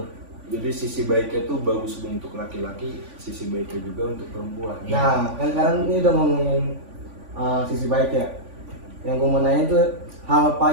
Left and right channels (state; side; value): late; left; 3.5 ms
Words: Jadi sisi baiknya tuh bagus untuk laki-laki, sisi baiknya juga untuk perempuan. Nah, kan sekarang ini udah ngomongin sisi baik ya. Yang gue mau nanya itu hal